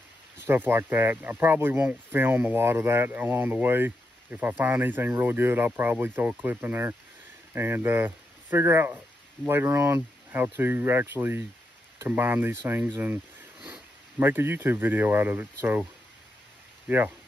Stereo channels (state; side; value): normal; both; correlation 0.84